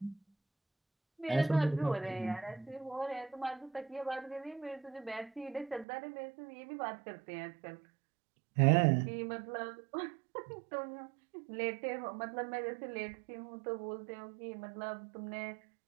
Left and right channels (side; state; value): left; drops out; at 5.9 s